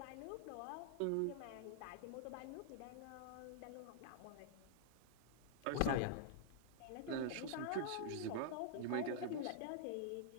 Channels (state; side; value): different; both; correlation -0.01